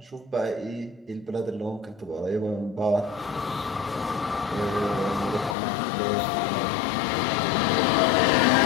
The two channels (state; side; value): drops out; right; at 5.6 s